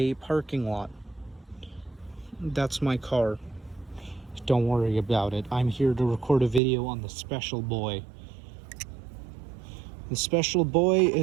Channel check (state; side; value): drops out; left; at 6.6 s